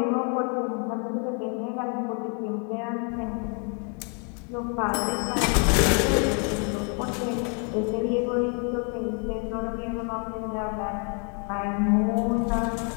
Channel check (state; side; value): quieter; right; 38.8 dB